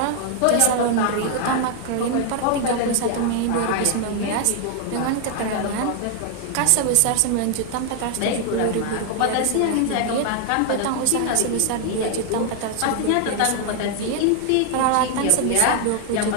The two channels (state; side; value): different; both; correlation 0.00